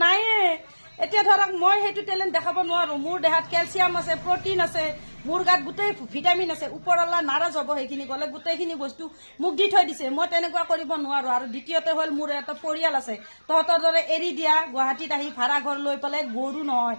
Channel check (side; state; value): both; inverted; correlation -1.00